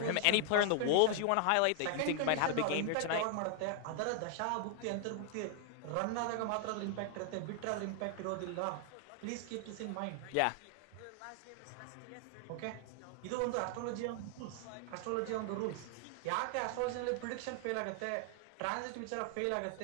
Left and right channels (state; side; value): different; both; correlation 0.00